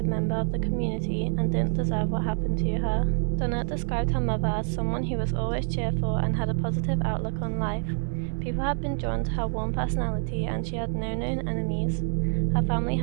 member of the community and didn't deserve what happened to her. Donette described her mother as someone who was always cheerful and had a positive outlook on life. People had been drawn to her warm personality, and she had no known enemies. Her family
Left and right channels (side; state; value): left; silent; digital silence